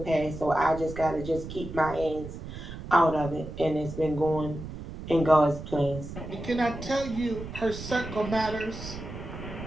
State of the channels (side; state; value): right; noise; rumble, 10 dB below the sound